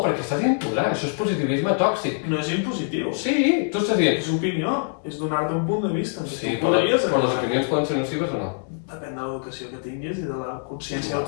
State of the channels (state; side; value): silent; right; 63 dB below the other